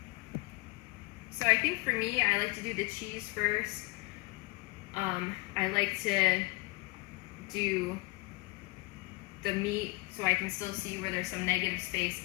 So I think for me, I like to do the cheese first. I like to do the meat so I can still see where there's some negative space,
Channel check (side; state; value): right; quieter; 25.2 dB